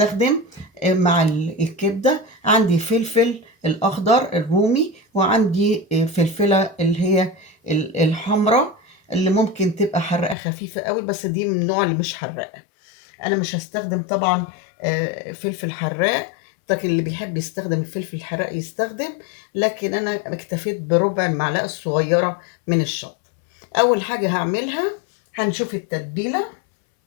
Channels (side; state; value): right; drops out; at 10.4 s